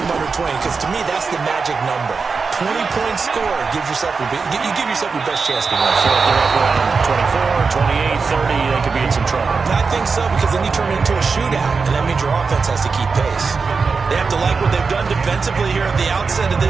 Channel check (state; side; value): quieter; left; 4.8 dB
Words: under 20, because to me, that's the magic number. 20 points scored gives yourself you give yourself your best chance to win. So if they're up around 24, 28, 30, they could be in some trouble. I think so, because then you turn it into a shootout, and that means your offense has to keep pace. They have to like what they've done defensively here at the outset of